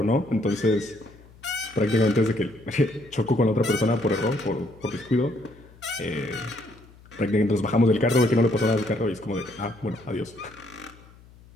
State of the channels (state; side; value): noise; left; hum, 24 dB below the sound